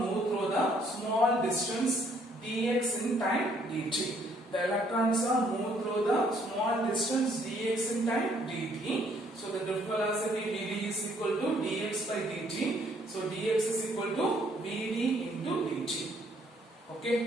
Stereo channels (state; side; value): normal; both; correlation 0.66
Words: through the small distance dx in time dt. The electrons are moved through the small distance dx in time dt. So the drift velocity vd is equal to dx by dt. So dx is equal to vd into dt. Okay,